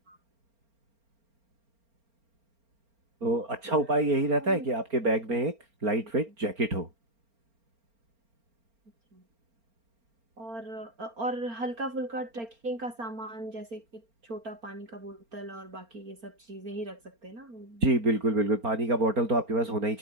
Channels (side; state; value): left; late; 4.4 ms